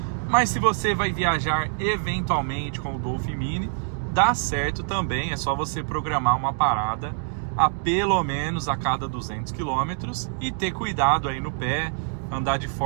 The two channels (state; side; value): silent; left; digital silence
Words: Mas se você vai viajar eventualmente com o Dolphin Mini, dá certo também, é só você programar uma parada a pelo menos a cada 200 km e ter cuidado aí no pé, andar de